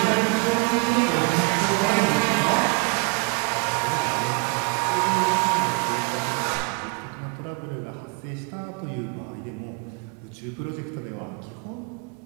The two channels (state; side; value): quieter; left; 30.0 dB